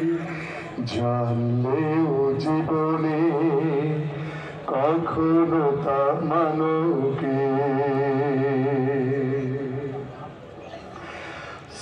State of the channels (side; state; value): both; identical; correlation 1.00